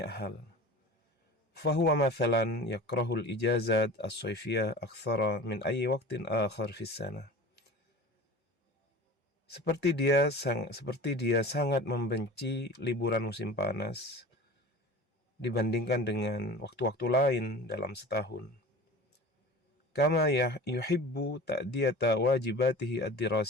hal. Fahuwa mathalan yakrahul ijazat as-sayfiyah akthara min ayyi waqtin akhar fis sana. Seperti dia sangat membenci liburan musim panas dibandingkan dengan waktu-waktu lain dalam setahun. Kama yuhibbu ta'diyata wajibatihi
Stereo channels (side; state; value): both; normal; correlation 0.37